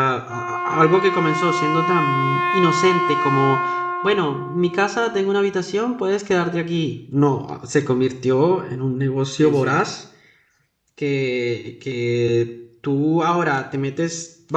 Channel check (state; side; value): identical; both; correlation 1.00